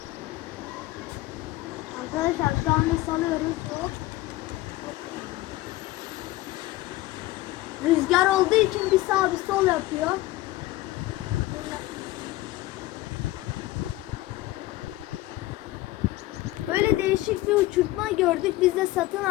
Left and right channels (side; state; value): right; quieter; 17.4 dB